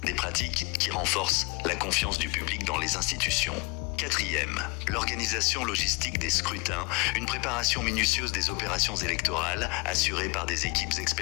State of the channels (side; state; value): right; quieter; 28.4 dB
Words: Des pratiques qui renforcent la confiance du public dans les institutions. 4e, l'organisation logistique des scrutins, une préparation minutieuse des opérations électorales assurée par des équipes